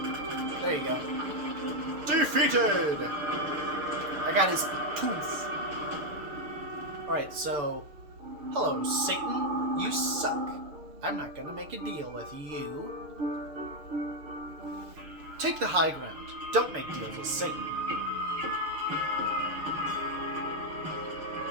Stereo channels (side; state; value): left; late; 6.9 ms